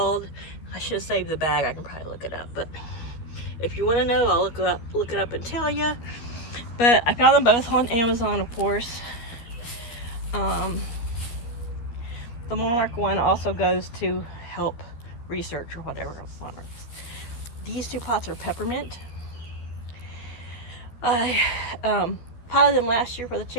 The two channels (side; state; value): right; late; 13 ms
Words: I should have saved the bag. I can probably look it up, but if you want to know, I'll look it up and tell you. But I found them both on Amazon, of course. The monarch one also goes to help research or whatever. These two pots are peppermint. I potted them last year for the